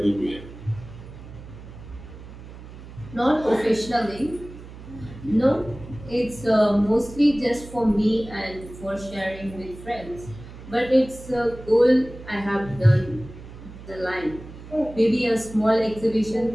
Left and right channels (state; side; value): noise; right; hum, 15 dB below the sound